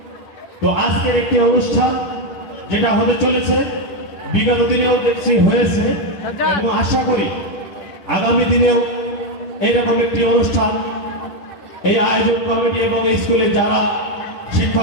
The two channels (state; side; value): late; right; 10 ms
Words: তো আজকের একটি অনুষ্ঠান যেটা হতে চলেছে, বিগত দিনেও দেখছি হয়েছে এবং আশা করি আগামী দিনেও এইরকম একটি অনুষ্ঠান এই আয়োজক কমিটি এবং স্কুলে যারা